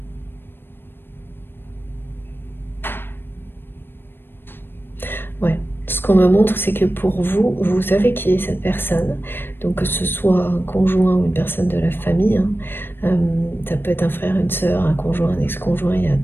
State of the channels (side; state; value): right; late; 0.10 ms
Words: Ouais, ce qu'on me montre, c'est que pour vous, vous savez qui est cette personne. Donc que ce soit un conjoint ou une personne de la famille, hein, ça peut être un frère, une sœur, un conjoint, un ex-conjoint, il y a